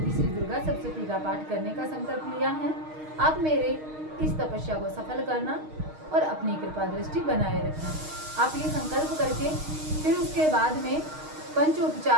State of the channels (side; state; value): left; late; 6.4 ms